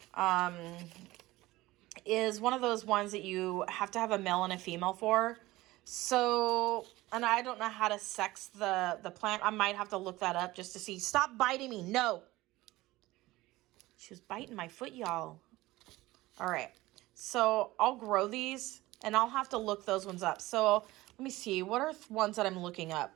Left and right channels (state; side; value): quieter; left; 18.6 dB